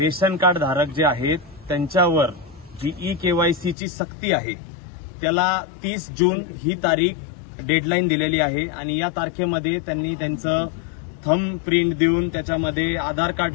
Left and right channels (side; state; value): right; drops out; at 3.8 s